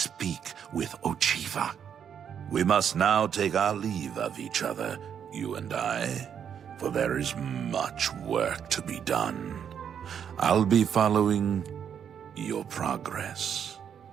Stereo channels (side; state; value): left; quieter; 8.2 dB